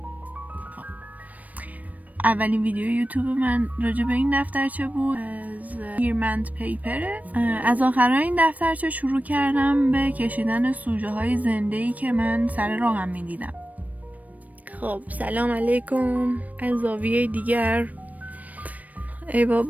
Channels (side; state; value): left; late; 0.073 ms